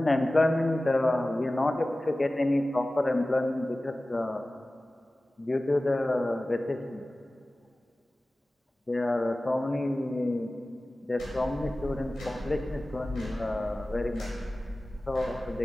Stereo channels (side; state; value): both; normal; correlation 0.97